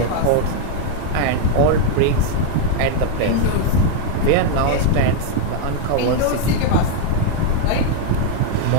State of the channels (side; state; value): both; different; correlation 0.01